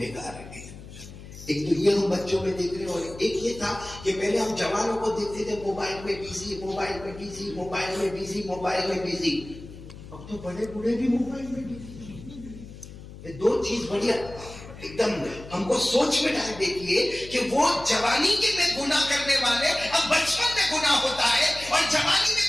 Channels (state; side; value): noise; left; hum, 15 dB below the sound